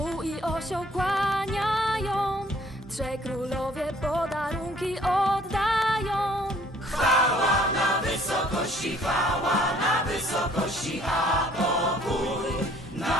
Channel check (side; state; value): both; normal; correlation 0.58